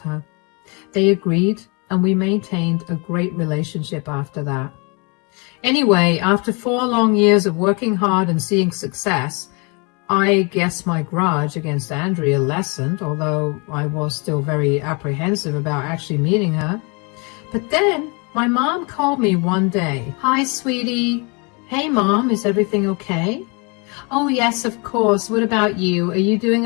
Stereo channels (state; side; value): quieter; right; 31.6 dB